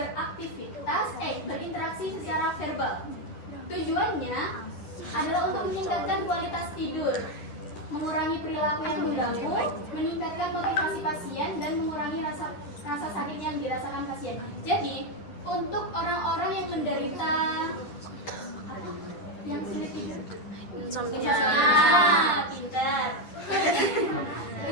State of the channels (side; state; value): right; late; 10 ms